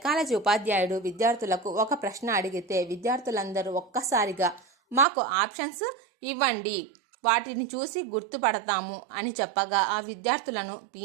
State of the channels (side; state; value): left; drops out; at 5.1 s